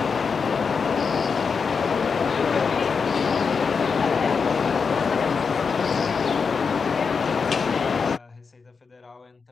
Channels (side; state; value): right; quieter; 5.6 dB